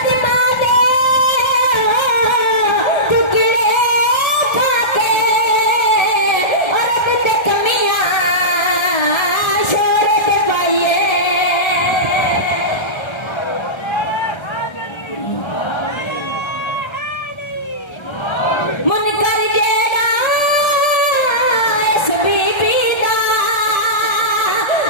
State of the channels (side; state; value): right; late; 1.3 ms